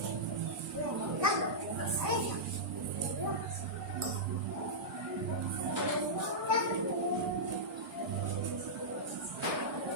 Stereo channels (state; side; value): normal; both; correlation -0.12